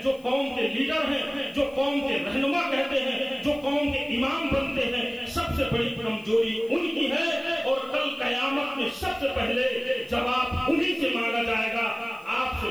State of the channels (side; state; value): left; noise; hiss, 27 dB below the sound